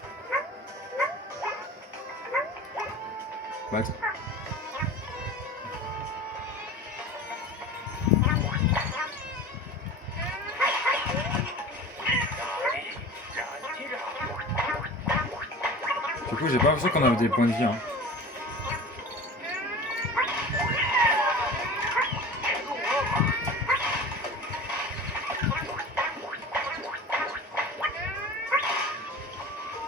Bah, attends. Du coup, j'ai pas l'impression qu'on avait des points de vie. Hein.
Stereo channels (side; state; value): both; normal; correlation 0.37